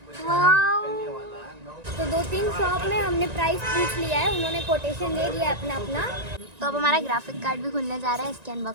तो 2-3 शॉप में हमने प्राइस पूछ लिया है, उन्होंने कोटेशन दे दिया अपना अपना। तो अब हमारा ग्राफिक कार्ड भी खुलने जा रहा है, इसकी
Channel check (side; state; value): left; late; 1.9 ms